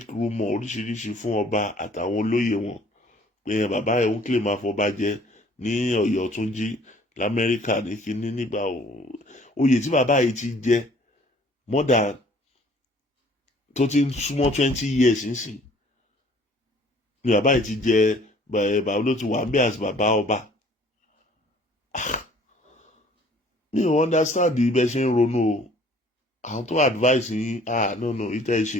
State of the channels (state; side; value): normal; both; correlation 0.55